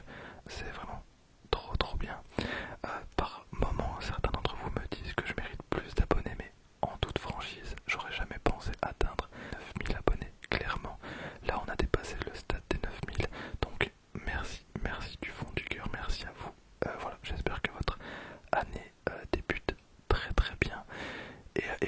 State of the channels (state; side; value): identical; both; correlation 1.00